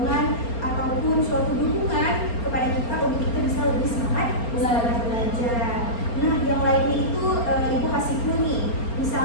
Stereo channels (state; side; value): late; right; 4.3 ms